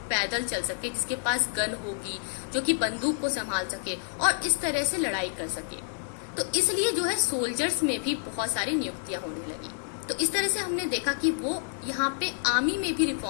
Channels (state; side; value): silent; right; 59 dB below the other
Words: पैदल चल सके, जिसके पास गन होगी, जो कि बंदूक को संभाल सके और इस तरह से लड़ाई कर सके। तो इसलिए जो है सोल्जर्स में भी बहुत सारी नियुक्तियां होने लगी। तो इस तरह से हमने देखा कि वो यहाँ पे आर्मी में भी